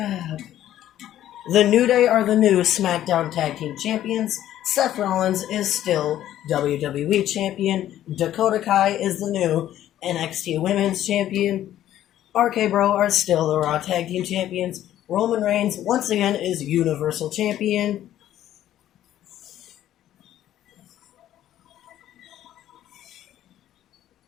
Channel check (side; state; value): right; quieter; 12.3 dB